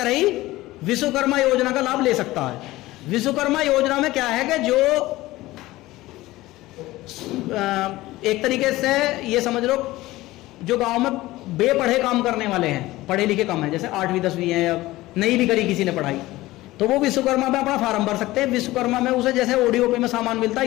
ही विश्वकर्मा योजना का लाभ ले सकता है। विश्वकर्मा योजना में क्या है कि जो एक तरीके से ये समझ लो, जो गांव में बेपढ़े काम करने वाले हैं, पढ़े लिखे कम है, जैसे 8वीं 10वीं है या नहीं भी करी किसी ने पढ़ाई, तो वो विश्वकर्मा में अपना फार्म भर सकते हैं। विश्वकर्मा में उसे जैसे ओडीओपी में सामान मिलता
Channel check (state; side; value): quieter; right; 18.0 dB